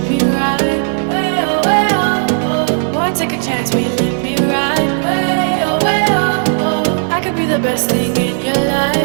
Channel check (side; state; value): left; silent; digital silence